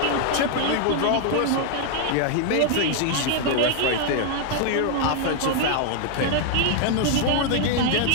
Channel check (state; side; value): different; both; correlation 0.00